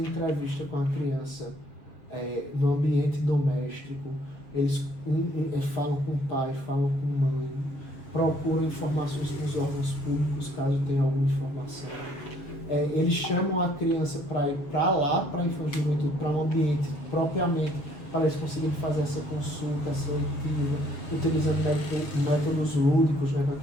com a criança no ambiente doméstico, eles falam com o pai, falam com a mãe, procuram informações com os órgãos públicos, caso tenha alguma informação. Eles chamam a criança para ir para lá, para a Infância e Juventude, para um ambiente propriamente, para eles conseguirem fazer essa consulta, essa leitura, utilizando métodos lúdicos, né,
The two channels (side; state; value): right; late; 7.1 ms